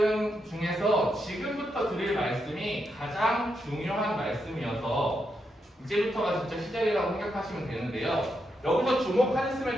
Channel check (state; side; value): normal; both; correlation 0.82